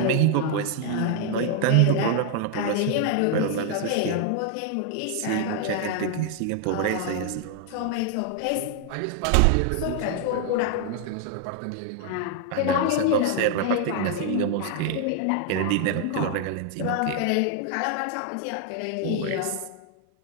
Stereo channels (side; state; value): both; different; correlation 0.00